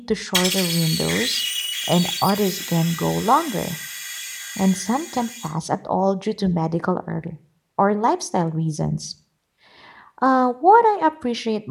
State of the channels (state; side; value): identical; both; correlation 1.00